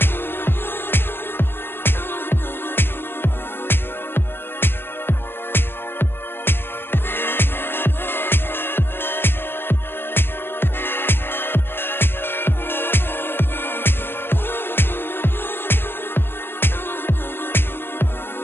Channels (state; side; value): late; right; 0.10 ms